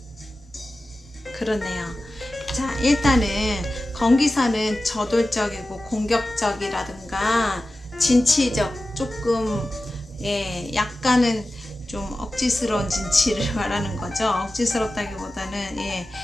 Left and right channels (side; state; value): both; normal; correlation 0.95